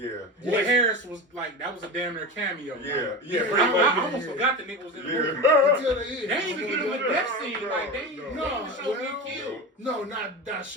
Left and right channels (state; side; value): normal; both; correlation 0.24